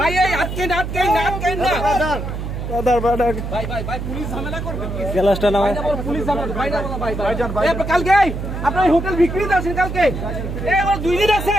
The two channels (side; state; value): right; noise; hum, 5 dB below the sound